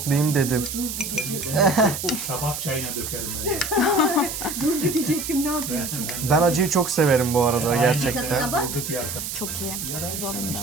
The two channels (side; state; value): right; noise; hiss, 6 dB below the sound